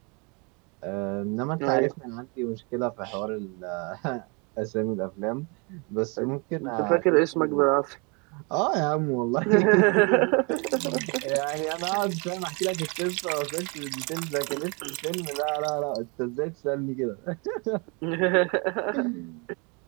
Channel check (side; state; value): left; quieter; 31.8 dB